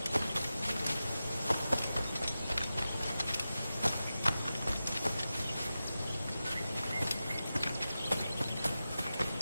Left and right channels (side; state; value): both; inverted; correlation -0.93